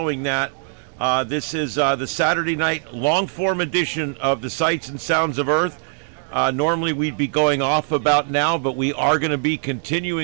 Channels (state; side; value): silent; left; 63 dB below the other